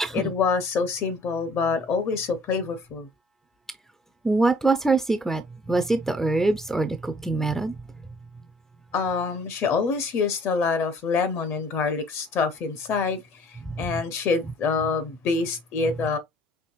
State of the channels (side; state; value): both; normal; correlation 0.56